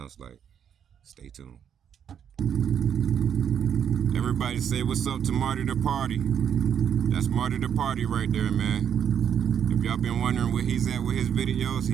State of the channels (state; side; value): quieter; left; 8.5 dB